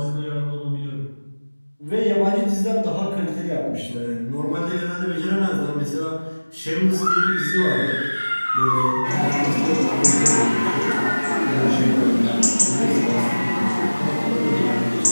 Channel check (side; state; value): both; inverted; correlation -1.00